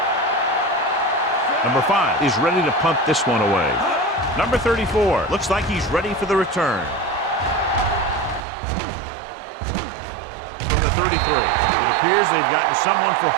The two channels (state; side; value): drops out; left; at 8.5 s